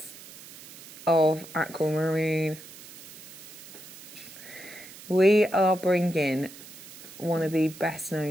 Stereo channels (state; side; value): noise; right; hiss, 16 dB below the sound